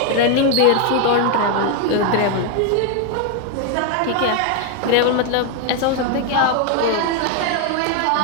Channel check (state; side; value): different; both; correlation 0.01